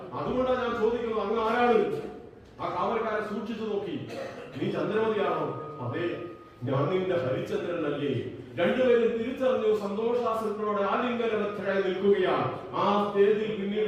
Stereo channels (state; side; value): identical; both; correlation 1.00